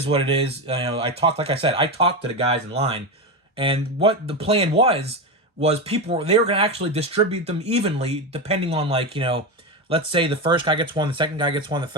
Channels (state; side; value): normal; both; correlation 0.15